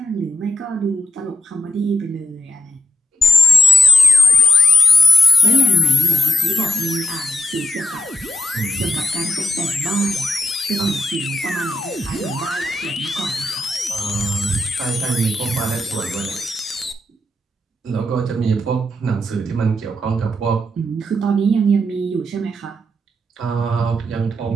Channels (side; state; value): both; normal; correlation 0.84